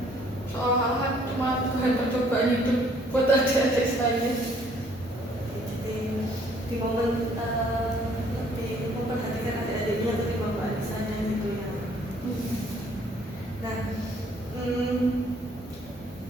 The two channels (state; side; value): normal; both; correlation 0.61